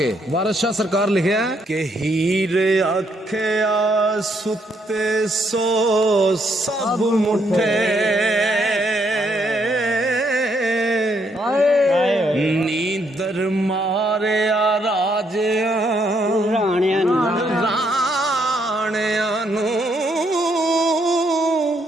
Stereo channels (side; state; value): both; normal; correlation 0.73